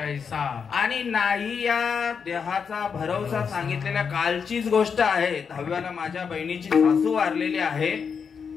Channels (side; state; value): right; quieter; 6.3 dB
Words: आणि नाही या देहाचा भरवसा सांगितलेल्या कालचीच गोष्ट आहे. 10व्याला माझ्या बहिणीची सासू वारलेली आहे